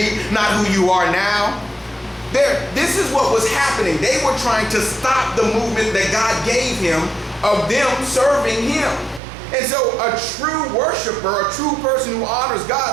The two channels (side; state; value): left; drops out; at 9.2 s